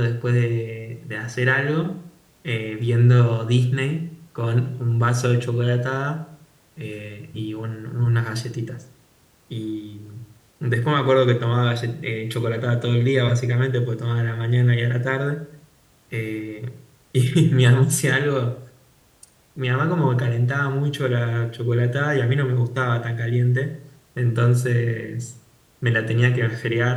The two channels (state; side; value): identical; both; correlation 1.00